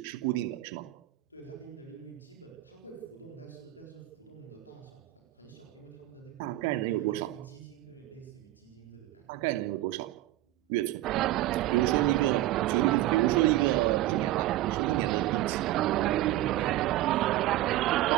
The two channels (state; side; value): quieter; left; 15.5 dB